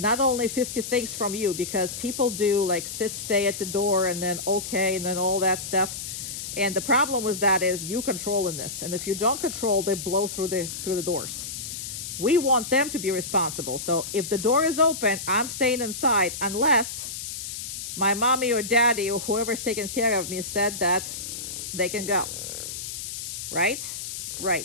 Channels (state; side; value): noise; left; hiss, 7 dB below the sound